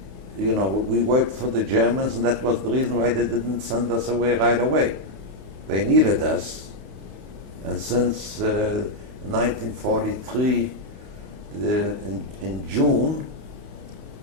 we worked for the Germans, and that was the reason why they didn't send us away right away. They needed us. And since 1943, in June,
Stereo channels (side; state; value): left; late; 28 ms